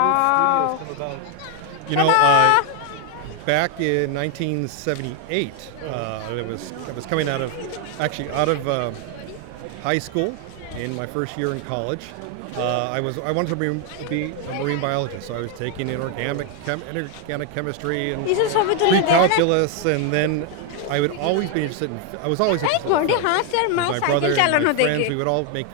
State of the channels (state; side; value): different; both; correlation 0.01